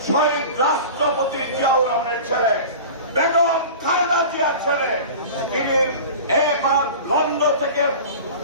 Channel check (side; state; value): both; inverted; correlation -0.36